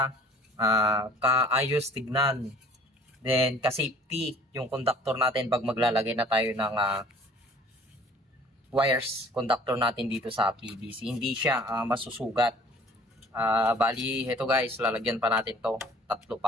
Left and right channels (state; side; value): normal; both; correlation 0.51